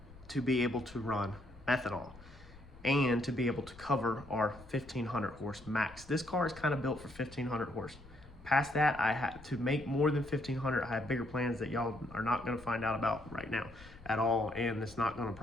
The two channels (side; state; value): left; noise; rumble, 20 dB below the sound